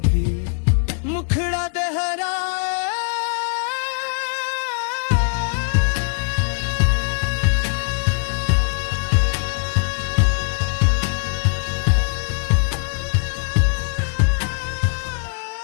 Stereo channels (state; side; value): silent; right; 63 dB below the other